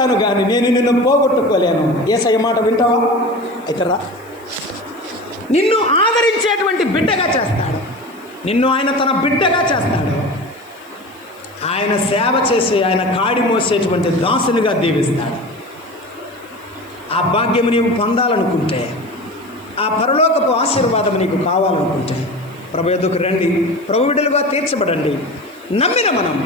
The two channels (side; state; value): right; noise; hiss, 27 dB below the sound